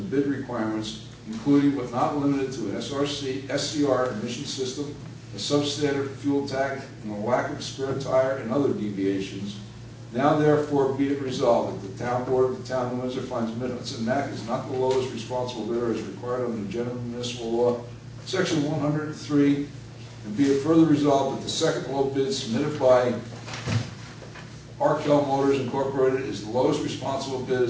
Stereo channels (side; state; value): both; identical; correlation 1.00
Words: bid requirements, including but not limited to an SCR emission system, a substandard fuel tank, and a lack of spare tire and other deviations. Now therefore be it resolved that the town board of the town of Windsor finds Mid-Hudson Mac is not the lowest responsible bidder as required under the general municipal law, section 103, and be it further resolved that the second low bid submitted by Arkell Motors Incorporated is the lowest responsible bid